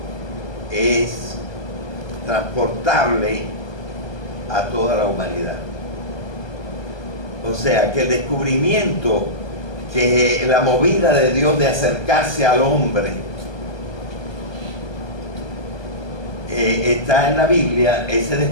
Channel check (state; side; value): late; right; 1.2 ms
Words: es transportable a toda la humanidad. O sea, que el descubrimiento, que la movida de Dios de acercarse al hombre está en la Biblia. Ese